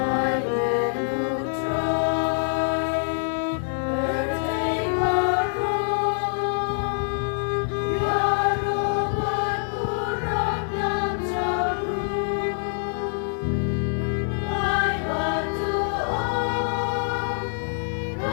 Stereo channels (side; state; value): right; silent; digital silence